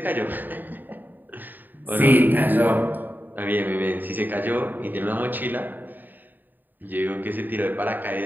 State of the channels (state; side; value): late; left; 0.089 ms